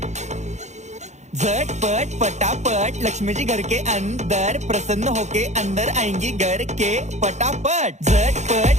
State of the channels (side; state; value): left; late; 0.33 ms